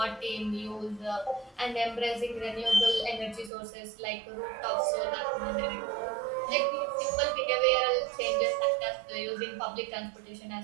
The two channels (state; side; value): drops out; left; at 3.5 s